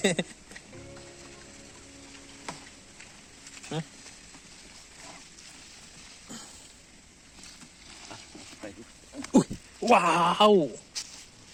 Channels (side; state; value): both; identical; correlation 1.00